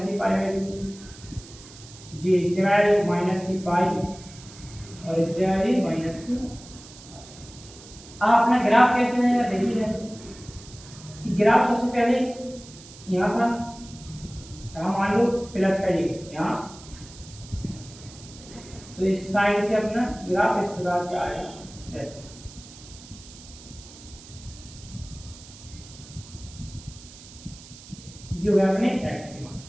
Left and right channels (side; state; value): right; noise; hiss, 19 dB below the sound